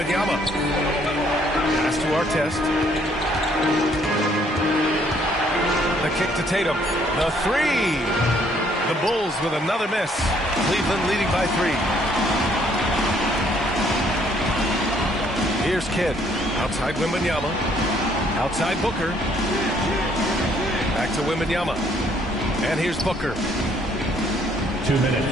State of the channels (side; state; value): both; normal; correlation 0.65